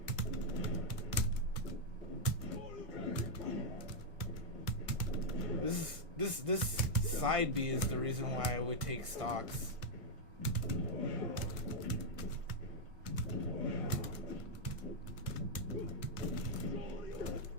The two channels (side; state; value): left; late; 1.5 ms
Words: This side B is the reason why I would take stocks.